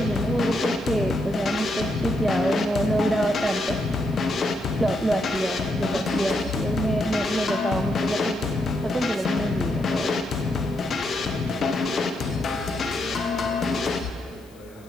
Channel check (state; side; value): noise; left; hiss, 28 dB below the sound